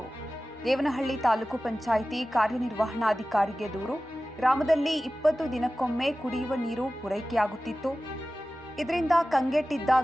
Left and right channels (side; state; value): both; normal; correlation 0.96